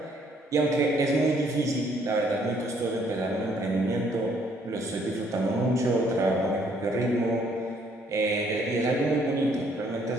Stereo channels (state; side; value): normal; both; correlation 0.65